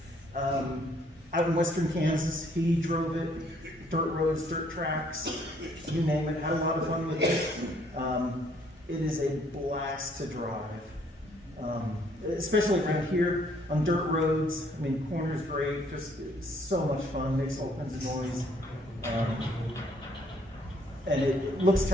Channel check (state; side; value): normal; both; correlation 0.65